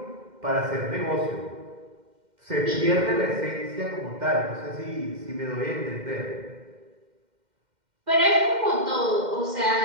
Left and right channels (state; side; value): late; left; 2.1 ms